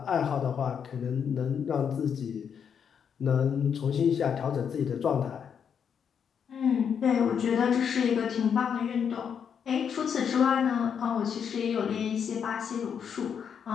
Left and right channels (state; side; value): quieter; right; 7.5 dB